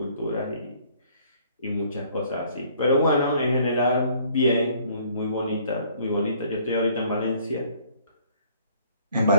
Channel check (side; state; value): both; inverted; correlation -0.59